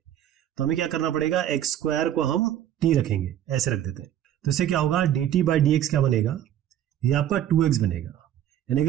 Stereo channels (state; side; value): quieter; left; 11.2 dB